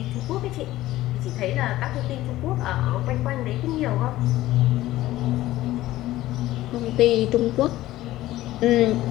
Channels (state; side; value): quieter; right; 15.7 dB